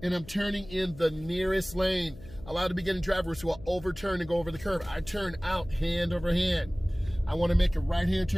and I'm turning in the nearest lane. A lot of beginning drivers will overturn and go over the curb. I turn out hand over hand. I want to make a right-hand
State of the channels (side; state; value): left; noise; hum, 18 dB below the sound